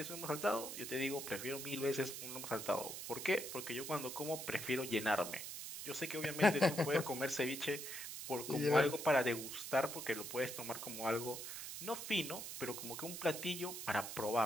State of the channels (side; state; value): right; noise; hiss, 7 dB below the sound